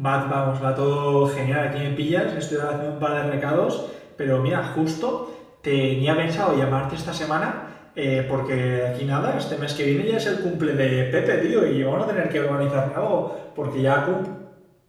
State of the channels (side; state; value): both; identical; correlation 1.00